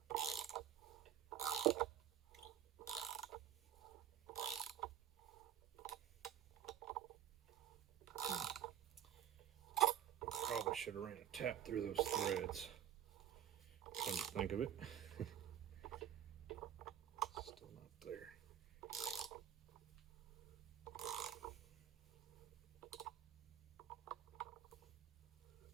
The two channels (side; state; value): left; quieter; 10.6 dB